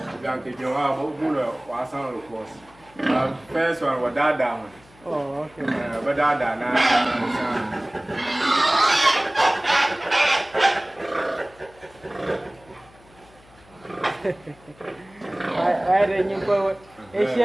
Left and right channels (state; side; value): noise; left; hum, 27 dB below the sound